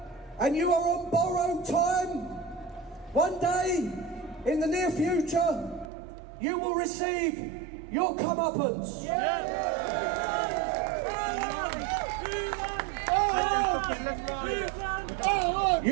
and you are on borrowed time. One day, in the near future, you will receive your comeuppance.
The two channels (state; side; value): drops out; left; at 5.9 s